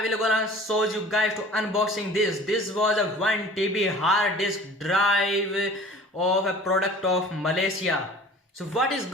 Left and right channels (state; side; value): normal; both; correlation 0.45